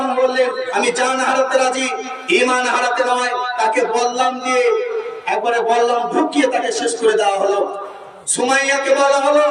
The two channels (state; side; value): identical; both; correlation 1.00